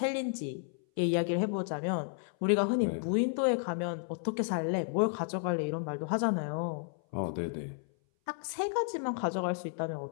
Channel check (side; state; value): right; silent; 56 dB below the other